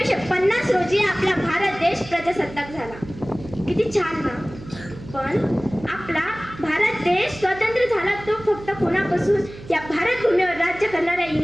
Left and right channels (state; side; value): noise; right; hum, 16 dB below the sound